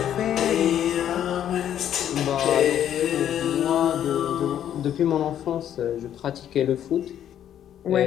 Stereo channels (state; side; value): quieter; right; 10.4 dB